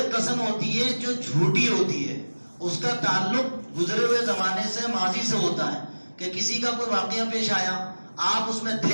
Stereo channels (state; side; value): inverted; both; correlation -1.00